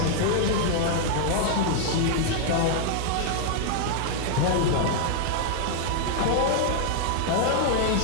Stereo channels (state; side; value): different; both; correlation 0.00